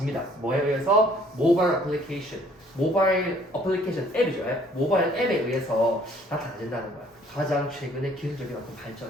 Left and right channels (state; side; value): normal; both; correlation 0.59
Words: 뭐에 의해서? 모바일 어플리케이션 앱이죠. 모바일 앱에 의해서 나타나진다는 거야. 가장 최근의 기술적인 어떤